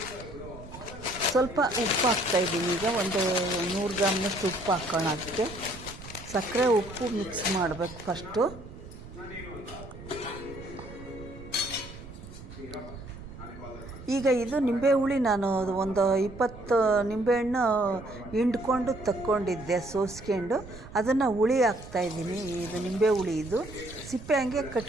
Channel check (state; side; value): noise; right; rumble, 15 dB below the sound